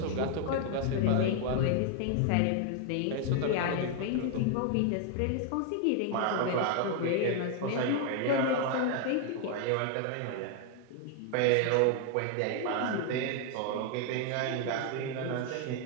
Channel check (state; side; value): different; both; correlation 0.00